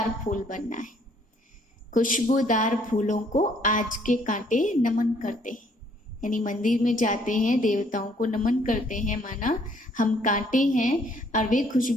फूल बनना है। खुशबूदार फूलों को आज के कांटे नमन करते हैं, यानी मंदिर में जाते हैं, देवताओं को नमन करते हैं, माना हम कांटे हैं और वे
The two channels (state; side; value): normal; both; correlation 0.64